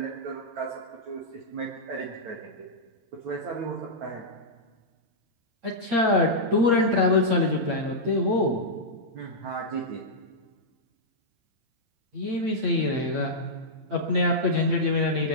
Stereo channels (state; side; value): late; left; 8.6 ms